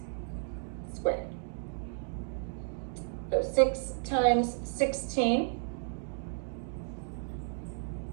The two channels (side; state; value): left; silent; digital silence